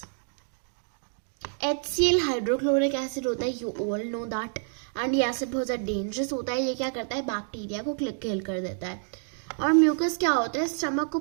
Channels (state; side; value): silent; left; digital silence